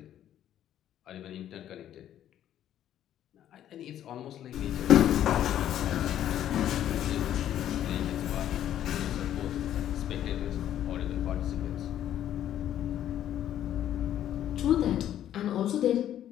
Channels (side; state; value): right; quieter; 11.2 dB